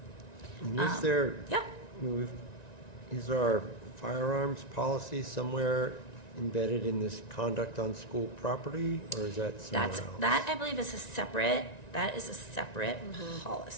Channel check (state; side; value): late; right; 1.9 ms